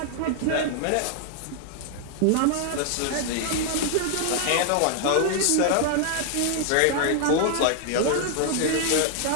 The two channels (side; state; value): both; different; correlation 0.00